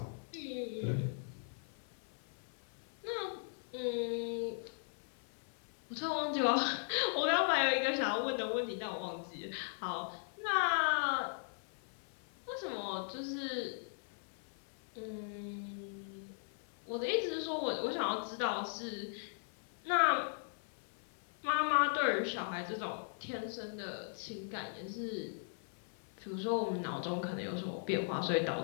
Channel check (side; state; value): right; silent; 52 dB below the other